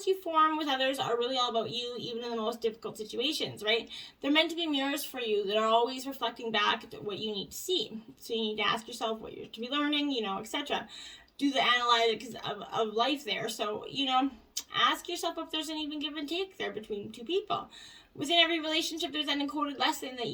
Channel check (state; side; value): identical; both; correlation 1.00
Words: you form with others are really all about you, even in the most difficult situations, right? They're meant to be mirrors for you that are always reflecting back what you need to see. So you need to ask yourself what you're to be learning, etc. Do the analytics of life there. So, ask yourself if there's an even give and take there between two people. Within every relationship, there's an encoded lesson that